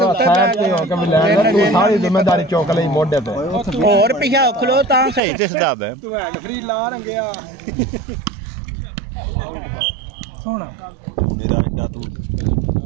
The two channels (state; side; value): drops out; left; at 5.2 s